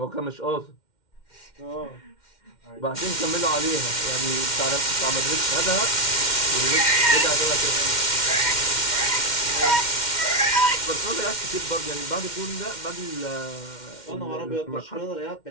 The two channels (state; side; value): late; right; 2.1 ms